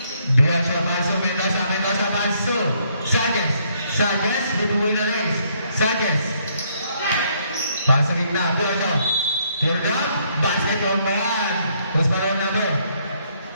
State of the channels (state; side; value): inverted; both; correlation -0.70